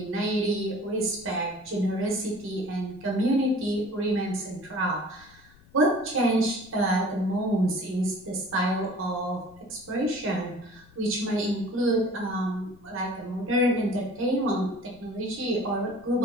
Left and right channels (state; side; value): noise; left; rumble, 26 dB below the sound